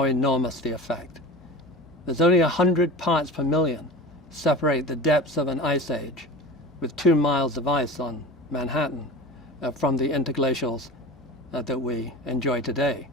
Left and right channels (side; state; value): both; normal; correlation 0.32